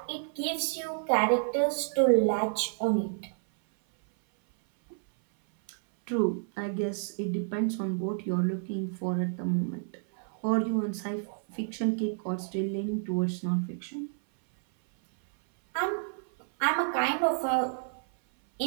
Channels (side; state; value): left; silent; 57 dB below the other